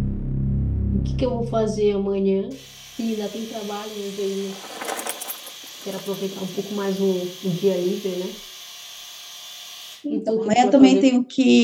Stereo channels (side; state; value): both; identical; correlation 1.00